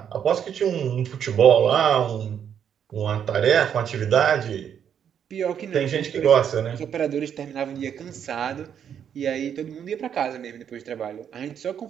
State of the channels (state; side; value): quieter; left; 8.6 dB